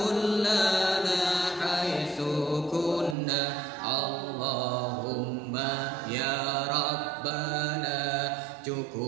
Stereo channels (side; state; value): left; drops out; at 3.2 s